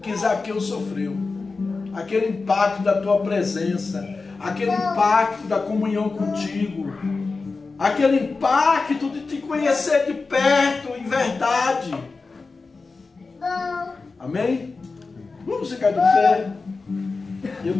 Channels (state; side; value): quieter; right; 4.1 dB